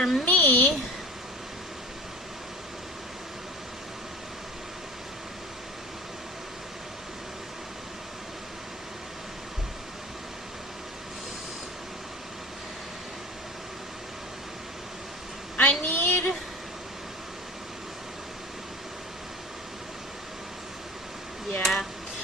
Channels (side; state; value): both; normal; correlation 0.38